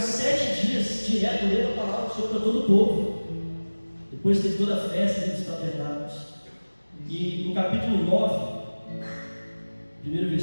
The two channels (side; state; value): both; inverted; correlation -1.00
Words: dias direto lendo a palavra do Senhor para todo o povo. Depois teve toda a festa dos tabernáculos. E no capítulo 9, primeiro